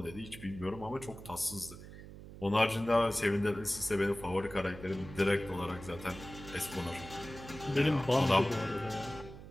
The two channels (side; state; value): right; noise; hum, 14 dB below the sound